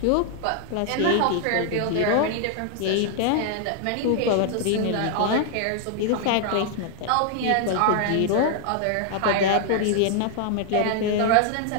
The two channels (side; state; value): both; different; correlation 0.00